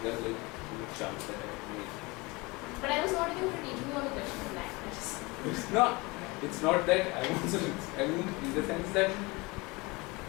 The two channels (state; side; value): quieter; right; 24.8 dB